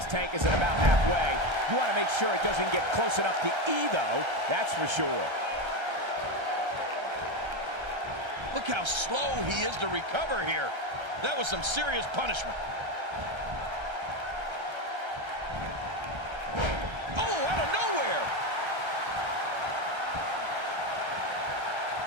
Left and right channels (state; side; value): late; left; 1.3 ms